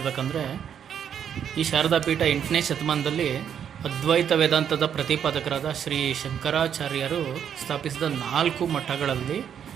ಈ ಶಾರದಾ ಪೀಠ 8ನೇ ಶತಮಾನದಲ್ಲಿ ಅದ್ವೈತ ವೇದಾಂತದ ಪ್ರತಿಪಾದಕರಾದ ಶ್ರೀ ಶಂಕರಾಚಾರ್ಯರು ಸ್ಥಾಪಿಸಿದ 4 ಮಠಗಳಲ್ಲಿ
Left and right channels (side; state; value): left; quieter; 8.6 dB